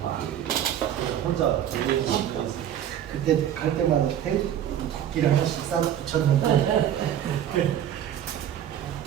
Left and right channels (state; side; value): quieter; left; 10.5 dB